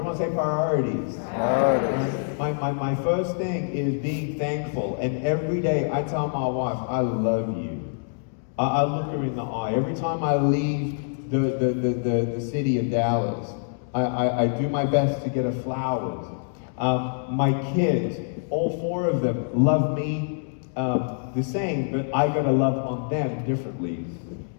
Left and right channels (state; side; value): silent; right; digital silence